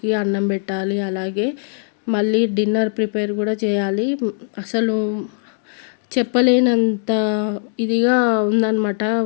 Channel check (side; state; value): right; silent; 66 dB below the other